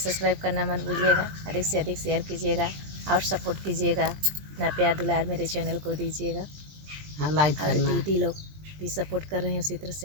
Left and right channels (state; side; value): late; left; 20 ms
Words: सब्सक्राइब करना मत भूलिएगा। अधिक से अधिक शेयर कीजिएगा और सपोर्ट कीजिएगा। अपना प्यार दुलार मेरे चैनल को दीजिएगा। हाँ, लाइक और करना। दीदी लोग भी सपोर्ट कर रहे हैं, उसी तरह